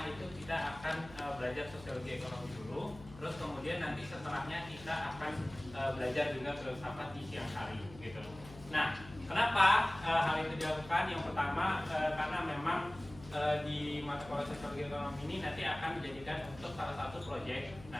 itu kita akan belajar sosiologi ekonomi dulu, terus kemudian nanti setelahnya kita akan belajar juga filsafat di siang hari gitu. Nah, kenapa hal itu dilakukan? Yang pertama karena memang di mata kuliah sosiologi ekonomi ini nanti akan dijadikan untuk salah satu proyek.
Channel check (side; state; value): left; noise; hum, 18 dB below the sound